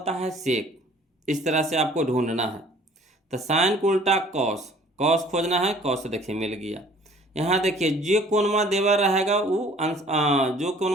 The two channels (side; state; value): both; normal; correlation 0.54